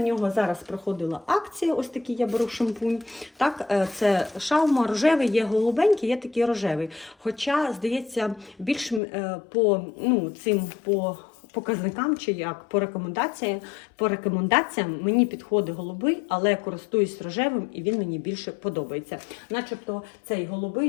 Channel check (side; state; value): right; drops out; at 9.0 s